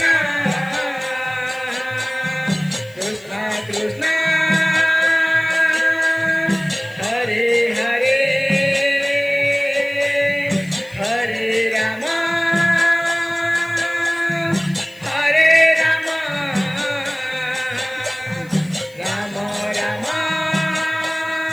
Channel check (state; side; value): noise; left; hiss, 27 dB below the sound